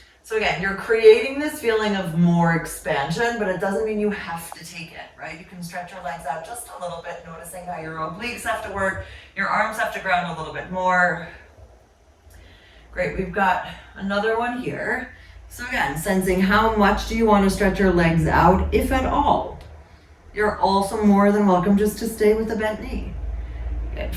So again, you're creating this feeling of more expansion, but it doesn't mean you have to take it, right? You can stretch your legs out just a little bit, noticing how your obliques have to work, your arms have to ground a little bit more. Great, we've got another one here. So again, sensing how much do you want to stretch your legs out, if at all. You're also more than welcome just to stay with the bent knee. Good.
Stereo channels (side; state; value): both; identical; correlation 1.00